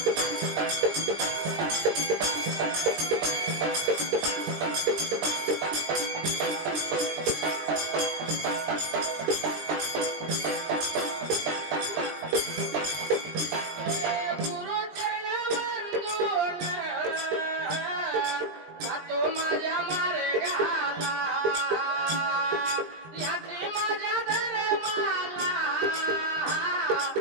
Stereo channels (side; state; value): left; late; 20 ms